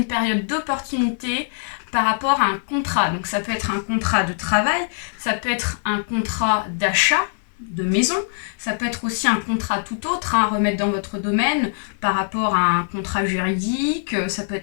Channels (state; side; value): silent; right; 64 dB below the other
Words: période d'opportunité par rapport à un contrat. Donc ça peut être un contrat de travail, ça peut être un contrat d'achat de maison, ça peut être aussi un contrat tout autre à remettre dans votre domaine par rapport à un contrat juridique, ça peut